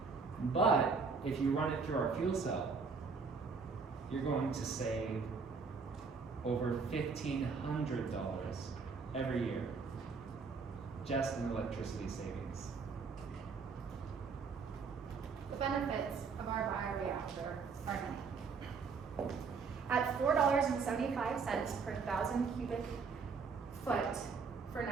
But if you run it through our fuel cell, you're going to save over $1,500 every year just in electricity savings. The benefits of our bioreactor are many. At $4.75 per 1,000 cubic foot for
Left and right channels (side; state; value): left; quieter; 5.1 dB